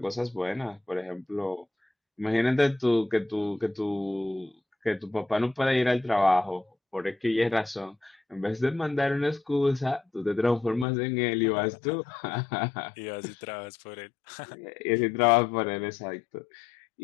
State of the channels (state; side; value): drops out; right; at 10.9 s